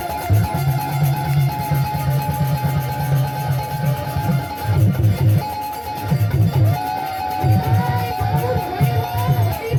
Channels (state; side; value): identical; both; correlation 1.00